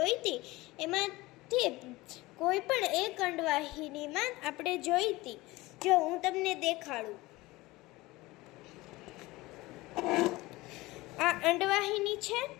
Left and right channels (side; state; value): right; quieter; 20.3 dB